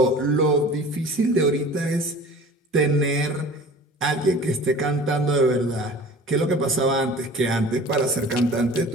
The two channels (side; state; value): both; normal; correlation 0.43